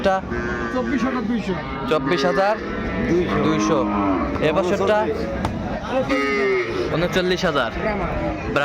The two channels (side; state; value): both; identical; correlation 1.00